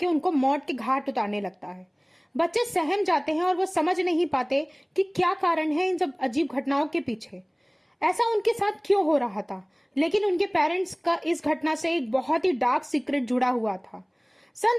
उनको मौत के घाट उतारने लगता है। बच्चे सहम जाते हैं और वो समझ नहीं पाते कि क्या कारण है इन सब अजीब घटनाओं के पीछे, ऐसा उनके साथ क्यों हो रहा था। लेकिन उनके पेरेंट्स का इस घटना से एक बहुत ही डार्क सीक्रेट जुड़ा हुआ था।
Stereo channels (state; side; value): identical; both; correlation 1.00